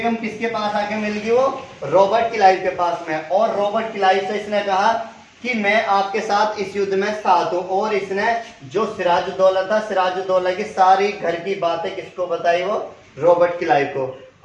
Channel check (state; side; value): identical; both; correlation 1.00